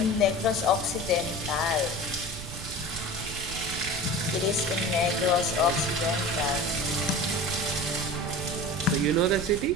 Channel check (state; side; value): noise; right; rumble, 11 dB below the sound